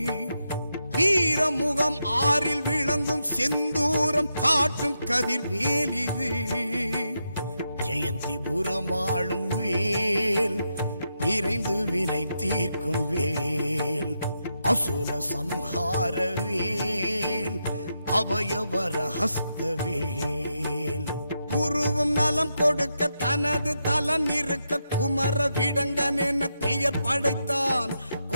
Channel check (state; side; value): inverted; both; correlation -0.84